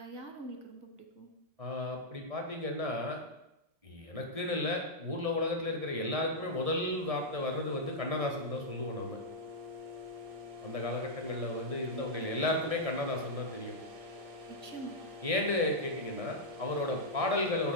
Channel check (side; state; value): left; late; 1.6 ms